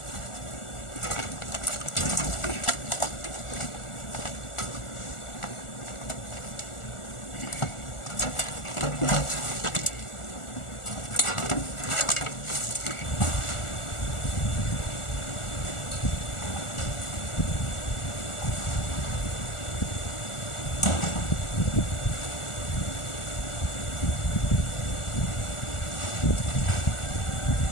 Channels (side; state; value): right; late; 1.4 ms